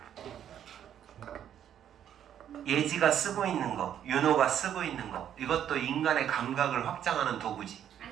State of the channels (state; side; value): quieter; left; 9.9 dB